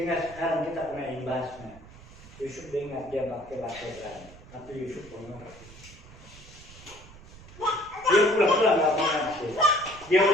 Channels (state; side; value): noise; right; rumble, 19 dB below the sound